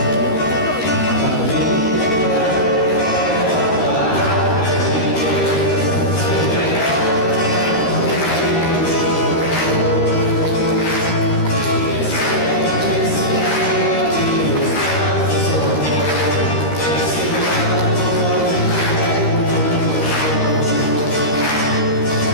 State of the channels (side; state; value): right; late; 13 ms